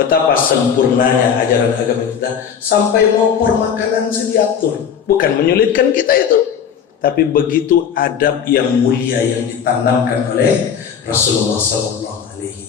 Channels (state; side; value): quieter; right; 7.7 dB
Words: sempurnanya ajaran agama kita, sampai mau makanan diatur. Bukan menyulitkan kita itu, tapi begitu adab yang mulia yang ditanamkan oleh Rasulullah SAW.